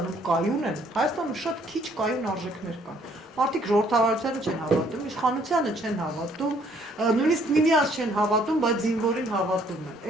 կայուն են, Հայաստանում շատ քիչ կայուն արժեքներ կան։ Մարդիկ ժողովրդավարությանը չեն հավատում, իշխանությանը չեն հավատում, նույնիսկ միմյանց չեն հավատում, բայց զինվորին հավատում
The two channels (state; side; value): normal; both; correlation 0.64